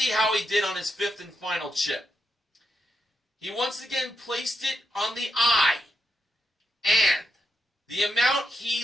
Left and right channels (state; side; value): normal; both; correlation 0.84